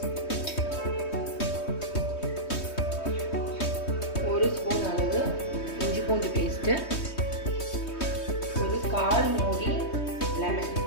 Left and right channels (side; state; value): right; late; 3.2 ms